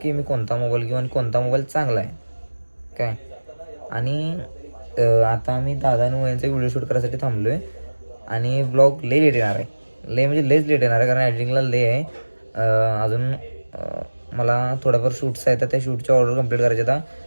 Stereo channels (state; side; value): inverted; both; correlation -1.00